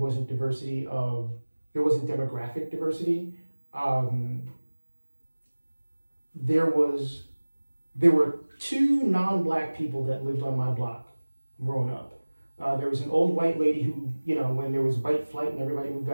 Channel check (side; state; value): both; inverted; correlation -1.00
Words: demographic diversity. There were two non-black people that lived on my block growing up. There was an old white lady who, when there was white flight and everybody moved